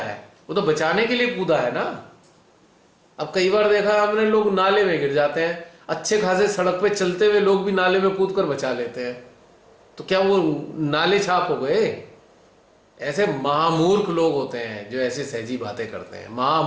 वो तो बचाने के लिए कूदा है ना। अब कई बार देखा हमने, लोग नाले में गिर जाते हैं, अच्छे खासे सड़क पे चलते हुए लोग भी नाले में कूद कर बचा लेते हैं, तो क्या वो नाले छाप हो गए? ऐसे महामूर्ख लोग होते हैं जो ऐसे सहजी बातें करते हैं,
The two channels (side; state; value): both; identical; correlation 1.00